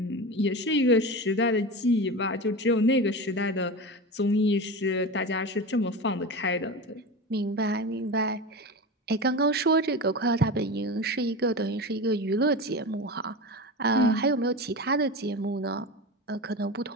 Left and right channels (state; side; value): normal; both; correlation 0.26